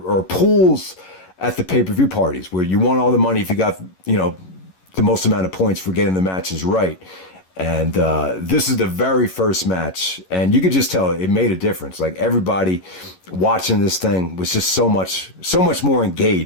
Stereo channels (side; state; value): right; late; 11 ms